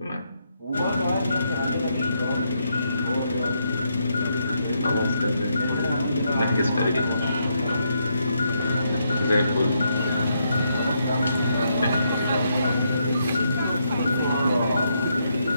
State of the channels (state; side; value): inverted; both; correlation -0.78